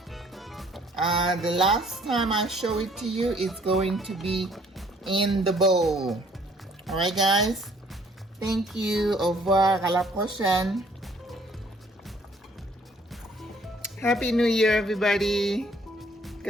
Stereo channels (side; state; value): both; normal; correlation 0.60